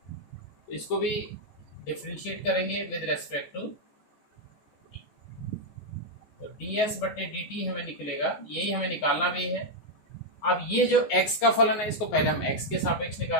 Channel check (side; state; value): right; late; 14 ms